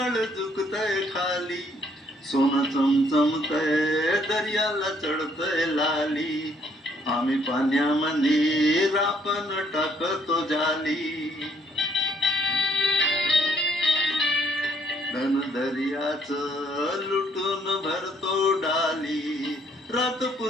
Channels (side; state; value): both; normal; correlation 0.66